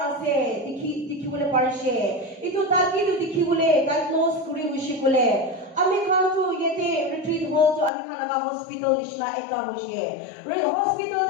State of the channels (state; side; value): drops out; right; at 7.9 s